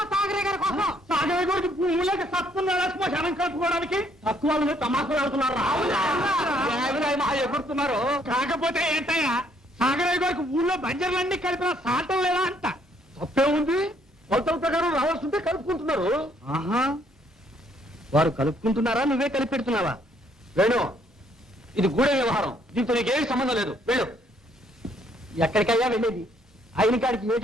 సాగరే గారి కోసం. సాగరే గారికి భూములకి సత్తున్నాడా శ్మశానం కలుపుకోవడానికి? తక్కువ తమాకులు ఆడుతున్నారు, ఎగురుతున్నారు. కాకపోతే ఏంటయ్యా, సాగరయ్య గారికి ఊళ్ళో బంజర్లన్నీ కలిపిన సాటం లేదా అంట. తప్పే ఉంది, కొలతల ప్రకారం రావాల్సింటే కలుపుకుంటున్నారు. వారు కలుపుకుంటున్నారా? నువ్వే కలిపి పెడుతున్నావా? వేణు, ఇది గూఢ వ్యవహారం, దీంతో నీకేం సంబంధం లేదు. వెళ్ళు. ఎక్కడికయ్యా వెళ్ళేది? అయిన కాడికి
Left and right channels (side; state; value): both; normal; correlation 0.67